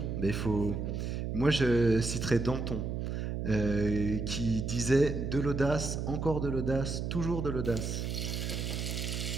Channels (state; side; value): noise; right; hum, 3 dB below the sound